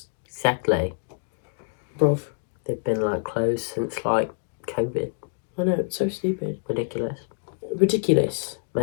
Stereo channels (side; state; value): right; silent; digital silence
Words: Exactly. Bruv. They've been, like, closed since, like, COVID. I know, it's so stupid. Ridiculous.